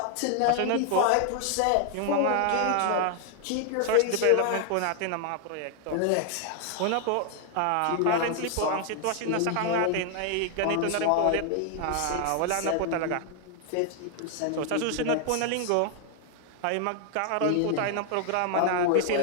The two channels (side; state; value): both; different; correlation 0.00